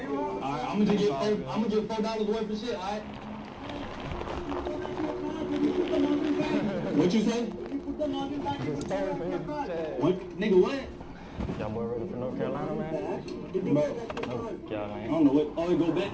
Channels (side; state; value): both; identical; correlation 1.00